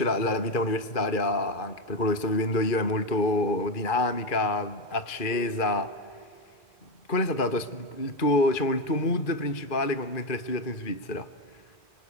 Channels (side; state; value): right; late; 2.4 ms